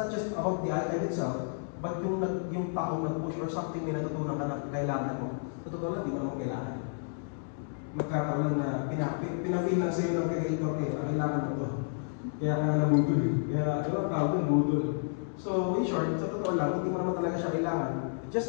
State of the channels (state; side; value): silent; right; digital silence